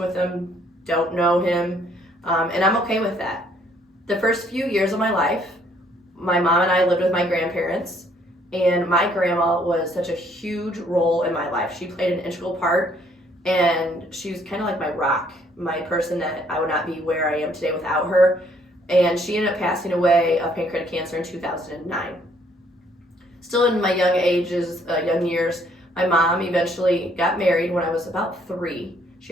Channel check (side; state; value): both; normal; correlation 0.65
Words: with him, don't know him, and I'm okay with that. The first few years of my life, my mom and I lived with my grandparents, and my grandma was such a huge role in my life. She played an integral part, and she was kind of like my rock, my person that I would not be where I am today without her. And she ended up passing away of pancreatic cancer in 2009. Still in my young years, my mom eventually got married when I was about 3. She